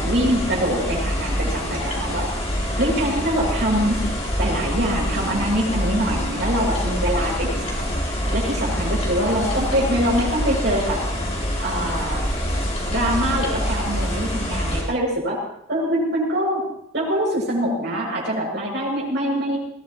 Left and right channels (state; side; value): normal; both; correlation 0.47